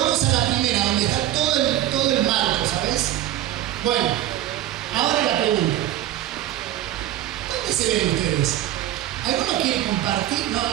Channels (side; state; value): left; quieter; 13.1 dB